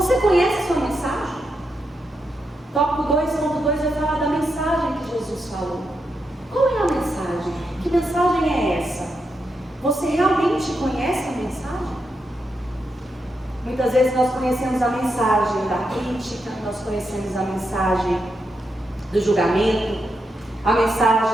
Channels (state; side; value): normal; both; correlation 0.84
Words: conhece a sua mensagem? Tópico 2.2 vai falar da mensagem que Jesus falou. Qual é a mensagem? Que mensagem é essa? Você realmente conhece a mensagem? Muitas vezes nós conhecemos a mensagem da crítica, nós conhecemos a mensagem do julgamento, a